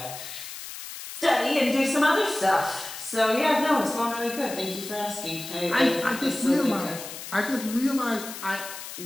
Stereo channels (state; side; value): noise; left; hiss, 11 dB below the sound